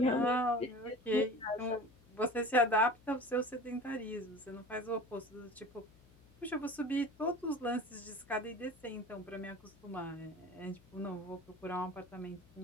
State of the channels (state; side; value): noise; left; hum, 26 dB below the sound